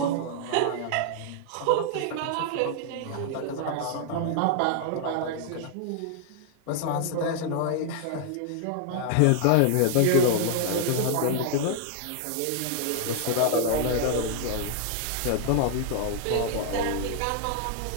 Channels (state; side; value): different; both; correlation 0.00